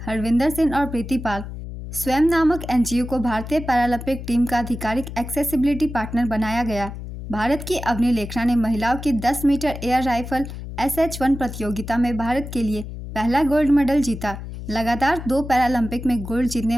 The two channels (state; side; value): noise; left; hum, 9 dB below the sound